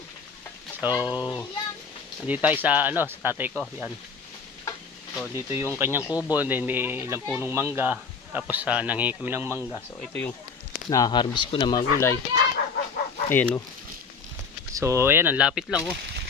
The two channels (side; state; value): right; quieter; 5.4 dB